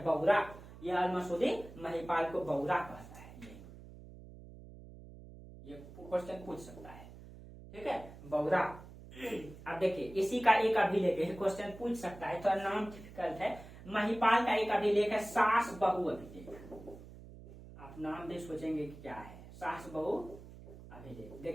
बौरा। ये अल मसूदी महिपाल को बौरा कहता है, ये क्वेश्चन पूछ सकता है। ठीक है, बौरा। अब देखिए इसी का एक अभिलेख है, क्वेश्चन पूछ सकता है, तो नाम डिफिकल्ट है। महिपाल का एक अभिलेख है सास बहु अभिलेख। आप नाम भी सोचेंगे कि क्या है, सास बहु अभिलेख।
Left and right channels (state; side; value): noise; right; hum, 17 dB below the sound